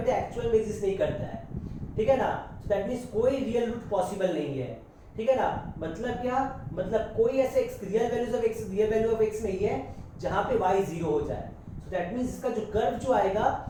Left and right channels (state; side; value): identical; both; correlation 1.00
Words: एक्चुअल में एग्जिस्ट नहीं करता है। ठीक है ना, सो दैट मींस कोई रियल रूट पॉसिबल नहीं है। ठीक है ना, मतलब क्या? मतलब कोई ऐसे रियल वैल्यू ऑफ x नहीं है जहां पे y जीरो हो जाए। सो दैट मींस इसका जो कर्व जो आएगा